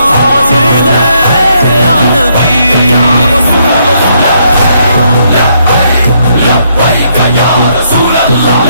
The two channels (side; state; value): both; inverted; correlation -0.73